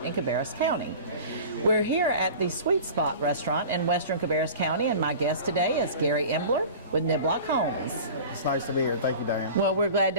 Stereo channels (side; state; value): both; inverted; correlation -0.38